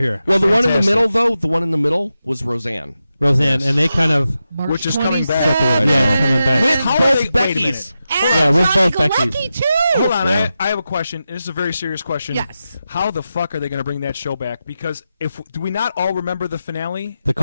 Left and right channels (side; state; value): both; inverted; correlation -0.90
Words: here." Well, the one in the middle, though, the one in the middle was Roseanne. Roseanne, and they kind of Which is coming back. yeah, coming back. With How both they- wait a Beckys. And Yeah, with Johnny both Galecki, Beckys. too. Hold on, Yeah. I have a question. This is a very serious question. Yes. How the fuck are they going to bring that show back? Because do we not all remember the finale?